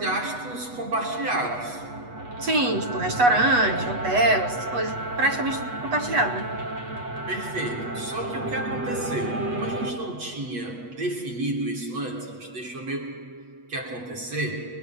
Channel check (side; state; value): left; late; 8.2 ms